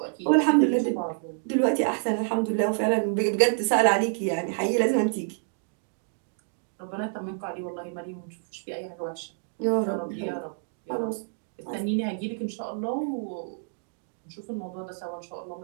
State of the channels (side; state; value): left; silent; digital silence